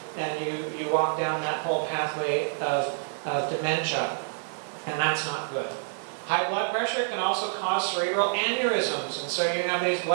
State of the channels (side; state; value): left; silent; digital silence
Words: and you walk down that whole pathway of dementia. And that's not good. High blood pressure can also cause cerebral aneurysms. And so you have these